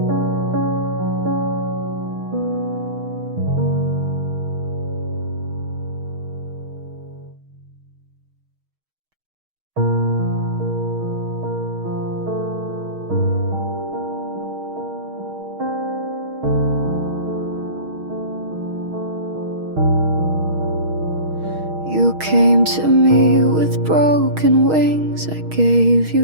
You came to me with broken wings. I gave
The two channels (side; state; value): left; late; 6.4 ms